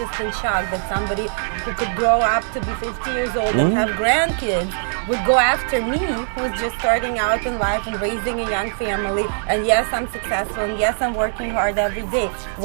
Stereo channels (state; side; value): silent; left; 58 dB below the other